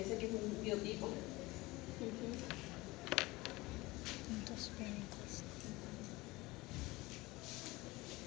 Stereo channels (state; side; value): quieter; right; 21.2 dB